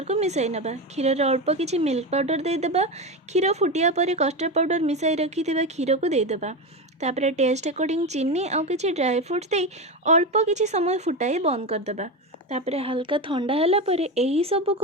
को मिसाई नबा। क्षीर रे अल्प किसी मिल्क पाउडर देदेबा। क्षीर फुटिया पर कस्टर्ड पाउडर मिसाई रखिथिबा क्षीर को देदेबा। तापर टेस्ट अकॉर्डिंग चीनी आउ किसी ड्राई फ्रूट्स दे अल्प किसी समय फुटाई बंद करदेबा। तापरे हल्का ठंडा होला परे एही सब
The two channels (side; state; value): both; normal; correlation 0.17